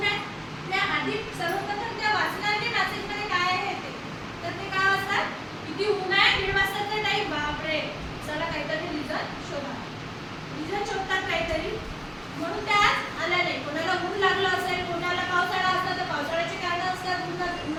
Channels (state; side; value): identical; both; correlation 1.00